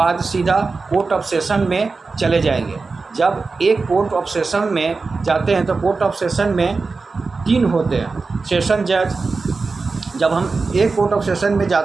सीधा कोर्ट ऑफ सेशन में चले जाएंगे। जब एक कोर्ट ऑफ सेशन में जाते हैं तो कोर्ट ऑफ सेशन में 3 होते हैं सेशन जज। जब हम एक कोर्ट ऑफ सेशन में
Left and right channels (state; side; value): quieter; left; 4.2 dB